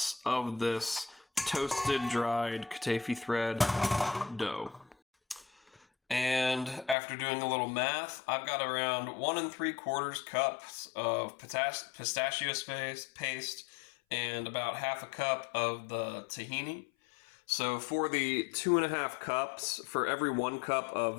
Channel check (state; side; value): drops out; right; at 7.0 s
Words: of this toasted dried Kataifi thread dough. And after doing a little math, I've got around 1 3/4 cups of pistachio paste and about half a cup of the tahini. So for the 2.5 cups, for every 1 cup